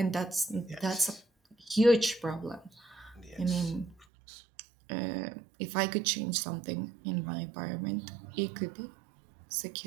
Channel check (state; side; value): drops out; left; at 4.0 s